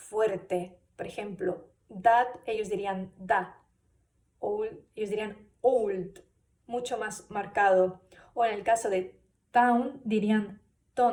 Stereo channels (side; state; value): both; identical; correlation 1.00